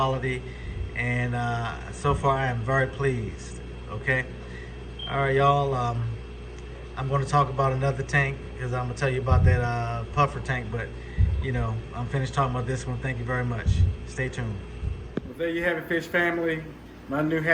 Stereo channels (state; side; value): identical; both; correlation 1.00